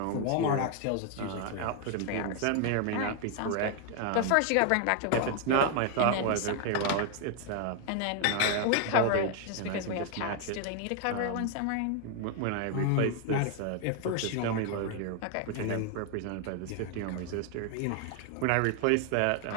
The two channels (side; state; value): both; different; correlation 0.00